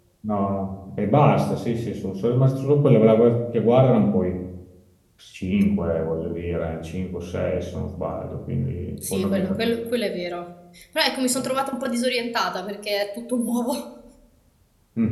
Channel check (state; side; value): identical; both; correlation 1.00